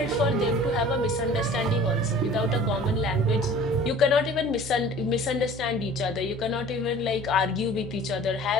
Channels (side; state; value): both; normal; correlation 0.45